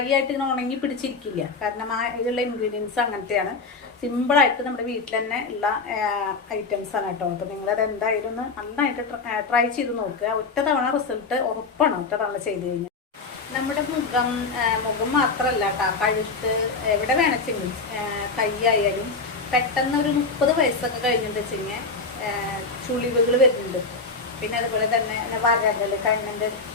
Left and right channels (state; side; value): quieter; right; 4.1 dB